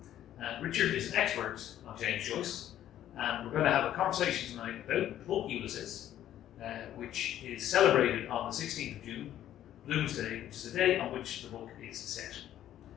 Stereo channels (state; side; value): quieter; right; 11.9 dB